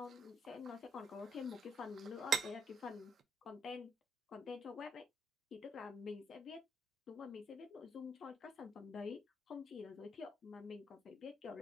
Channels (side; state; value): both; normal; correlation 0.73